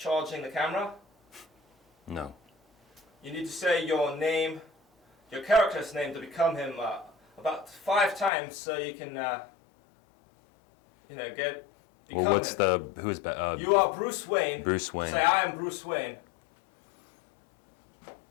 the camera? No. You need to say your name, your character's name to become him about 5 times so you can, get. Well, what's him. who is You are Bruce Wayne. Bruce Wayne. Say I am Bruce Wayne.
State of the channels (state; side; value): drops out; right; at 8.3 s